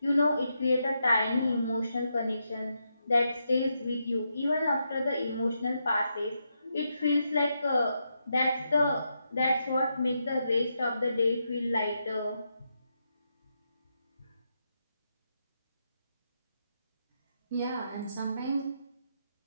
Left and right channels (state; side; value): inverted; both; correlation -0.83